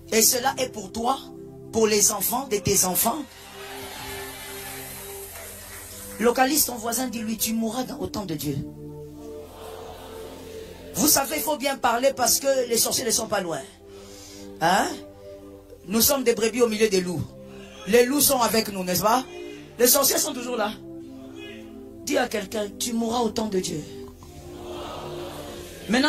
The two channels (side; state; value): both; identical; correlation 1.00